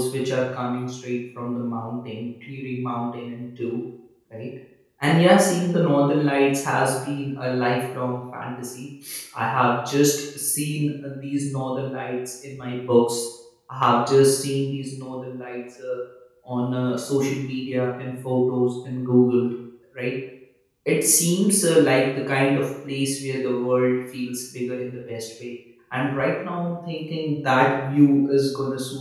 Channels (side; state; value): both; identical; correlation 1.00